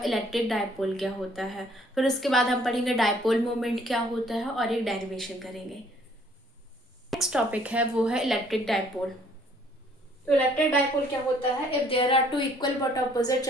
इलेक्ट्रिक डायपोल क्या होता है। फिर उसके बाद हम पढ़ेंगे डायपोल मोमेंट क्या होता है और एक डेरिवेशन करेंगे। नेक्स्ट टॉपिक है वो है इलेक्ट्रिक डायपोल। तो इलेक्ट्रिक डायपोल क्या होता है? If there are two equal but opposite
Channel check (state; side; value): normal; both; correlation 0.61